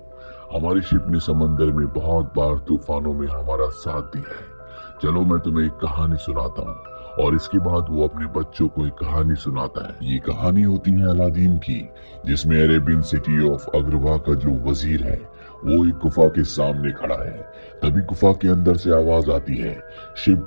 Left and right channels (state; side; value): inverted; both; correlation -1.00